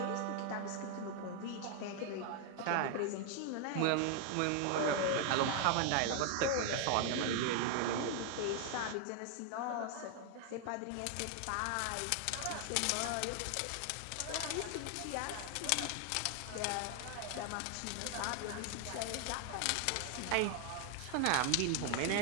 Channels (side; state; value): both; different; correlation 0.00